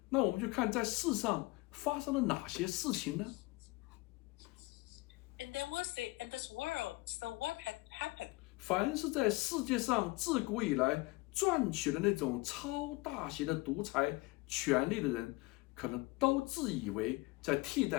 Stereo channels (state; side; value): quieter; right; 22.7 dB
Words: 那我们就看在世上发生了哪些事情呢？ And then we'll see in this world, so what had happened? 凡是在世界上自古以来赚取了那种超大型的独裁权力的人，可能都自以为在替